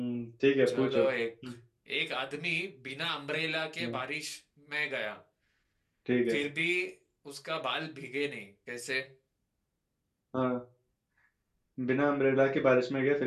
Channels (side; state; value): both; identical; correlation 1.00